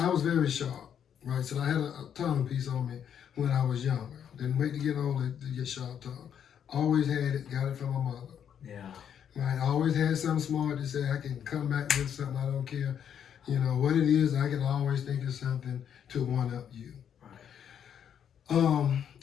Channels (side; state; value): right; quieter; 8.7 dB